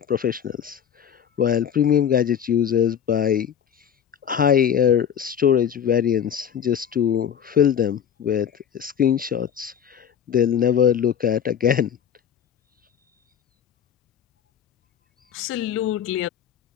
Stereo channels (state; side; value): quieter; right; 8.6 dB